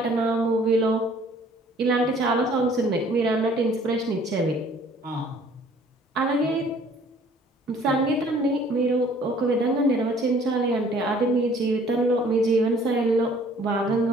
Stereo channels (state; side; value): normal; both; correlation 0.56